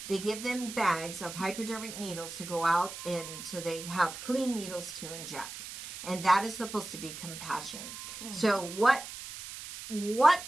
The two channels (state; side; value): noise; right; hiss, 10 dB below the sound